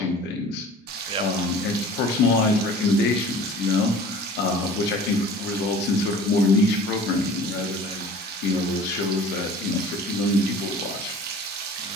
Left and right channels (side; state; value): both; normal; correlation 0.44